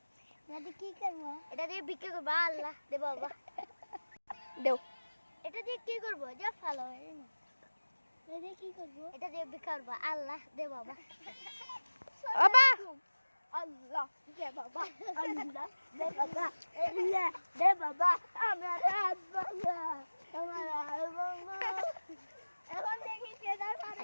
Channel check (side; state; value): both; inverted; correlation -1.00